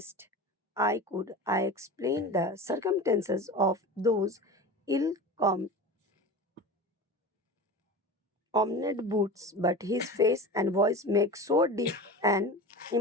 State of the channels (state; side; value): normal; both; correlation 0.32